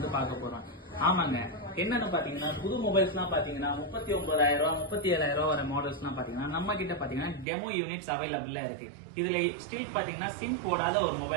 பார்க்க போறோம். ஆமாங்க, என்னன்னு பாத்தீங்கன்னா புது மொபைல்ஸ்லாம் பாத்தீங்கன்னா 39,000 37,000 வர மாடல்ஸ்லாம் பாத்தீங்கன்னா நம்ம கிட்ட பாத்தீங்கன்னா டெமோ யூனிட்ஸ் அவைலபிளா இருக்கு. இதுல ஸ்டில் பாத்தீங்கன்னா சிம் போடாத ஒரு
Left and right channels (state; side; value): drops out; left; at 7.5 s